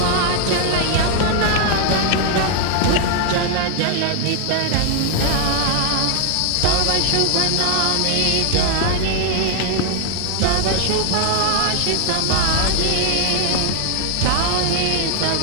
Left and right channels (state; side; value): different; both; correlation 0.00